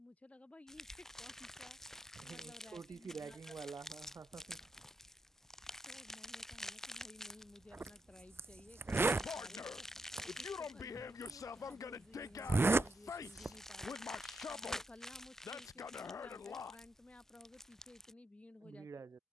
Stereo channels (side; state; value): both; normal; correlation 0.82